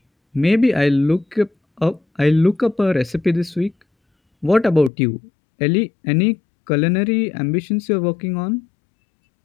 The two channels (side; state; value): right; drops out; at 4.9 s